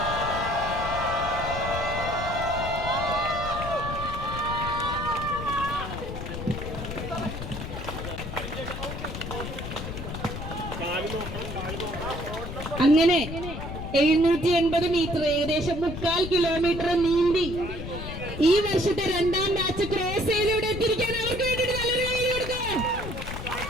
അങ്ങനെ 780 മീറ്റർ, ഏകദേശം 3/4 കിലോമീറ്റർ നീന്തി ഈ വർഷത്തെ 2ാം ബാച്ച് ക്രോസ് ചെയ്തിവിടെ എത്തിയിരിക്കാൻ അവർക്ക് വേണ്ടിയിട്ട് നല്ലൊരു കൈ കൊടുക്കുക.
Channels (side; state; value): left; noise; rumble, 7 dB below the sound